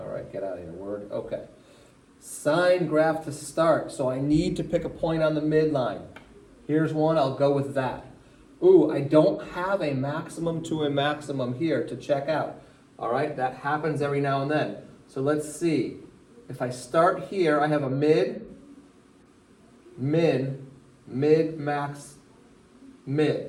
right, get out of here, word. Okay. Sine graph to start. So I need to pick a point on the midline. Here's one, I'll go with that. Ooh, I don't have a maximum to a maximum here to check out. All right, that happens every now and then. So let's see. If I start here, I have a mid, min, mid, max,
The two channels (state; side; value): identical; both; correlation 1.00